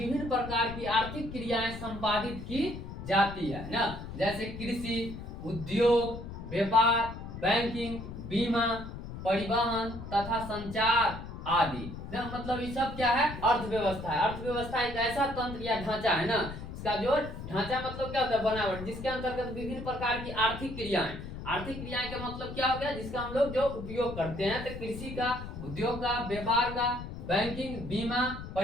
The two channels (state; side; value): noise; left; rumble, 10 dB below the sound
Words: प्रकार की आर्थिक क्रियाएं संपादित की जाती है ना। जैसे कृषि, उद्योग, व्यापार, बैंकिंग, बीमा, परिवहन तथा संचार आदि ना। मतलब ये सब क्या है? अर्थव्यवस्था है। अर्थव्यवस्था एक ऐसा तंत्र या ढांचा है ना, इसका जो ढांचा मतलब क्या होता है? बनावट, जिसके अंतर्गत विभिन्न प्रकार की आर्थिक क्रियाएं का मतलब क्या हो गया? जिसका हम लोग जो उपयोग करते हैं। तो कृषि का, उद्योग का, व्यापार का, बैंकिंग, बीमा,